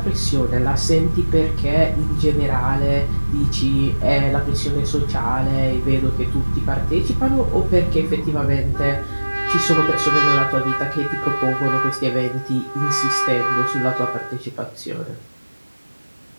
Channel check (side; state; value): both; inverted; correlation -1.00